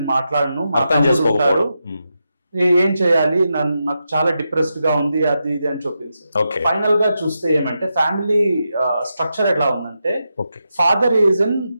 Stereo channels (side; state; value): both; inverted; correlation -0.87